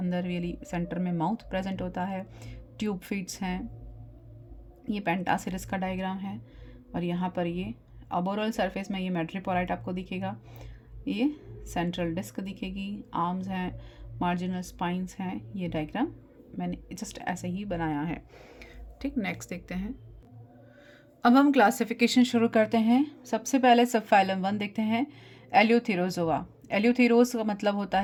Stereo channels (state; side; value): identical; both; correlation 1.00